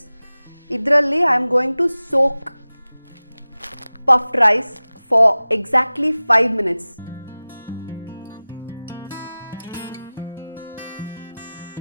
Idralli I am going to soak puffed rice for exactly 5 minutes.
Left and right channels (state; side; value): inverted; both; correlation -0.97